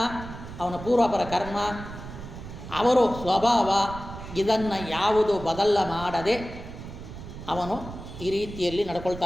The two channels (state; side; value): noise; right; rumble, 12 dB below the sound